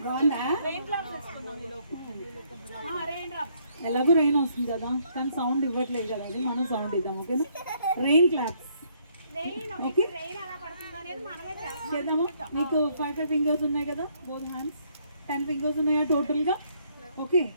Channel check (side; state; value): both; inverted; correlation -0.68